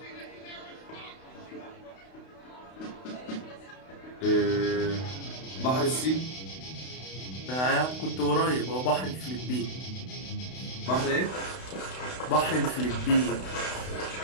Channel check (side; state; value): right; late; 32 ms